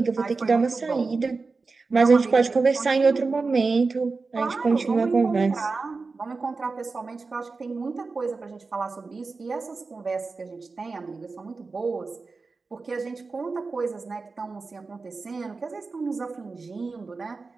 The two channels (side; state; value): left; quieter; 4.1 dB